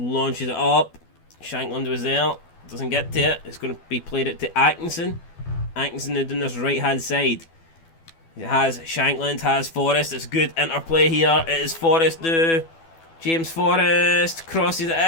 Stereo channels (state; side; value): late; right; 12 ms